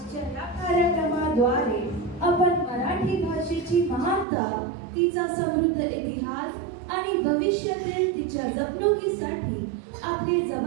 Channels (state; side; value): drops out; left; at 4.2 s